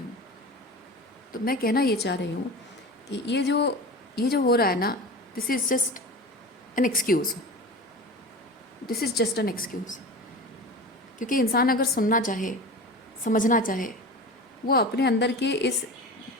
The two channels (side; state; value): both; normal; correlation 0.32